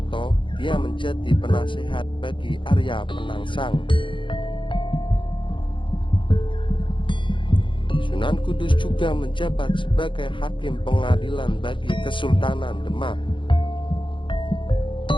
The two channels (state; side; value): late; right; 0.24 ms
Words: dia menjadi penasehat bagi Arya Penangsang. Sunan Kudus juga menjabat sebagai hakim pengadilan bagi Kesultanan Demak.